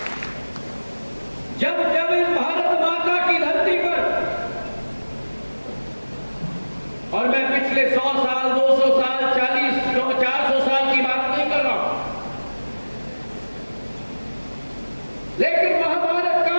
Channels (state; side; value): inverted; both; correlation -1.00